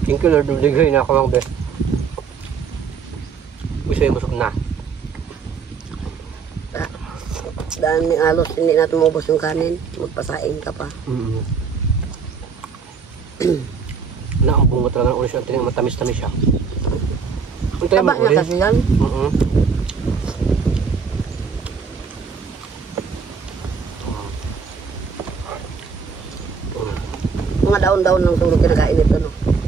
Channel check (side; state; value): left; quieter; 5.8 dB